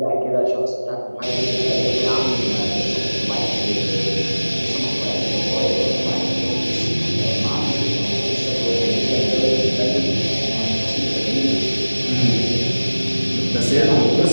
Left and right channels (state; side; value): inverted; both; correlation -1.00